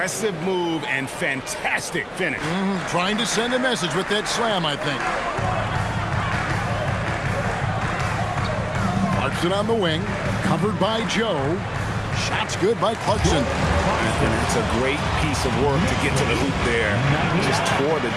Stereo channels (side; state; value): both; identical; correlation 1.00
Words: move and fantastic finish. Trying to send a message with that slam, I think. Clarkson on the wing, covered by Joe. Shots good by Clarkson. It's a great piece of work to get to the hoop there. Just tore the